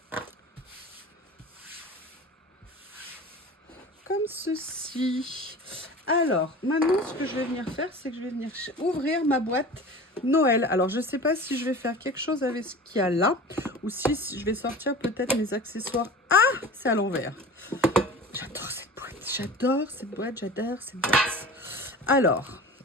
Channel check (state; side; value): normal; both; correlation 0.36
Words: Comme ceci. Alors, maintenant, ce que je vais venir faire, c'est que je vais venir ouvrir ma boîte Noël. Alors, je ne sais pas si je vais faire quelque chose avec ce qu'il y a là, ou si je vais sortir peut-être mes accessoires. Ah, c'est à l'envers. J'adore cette boîte. J'adore cette boîte. J'adore cette boîte. Alors,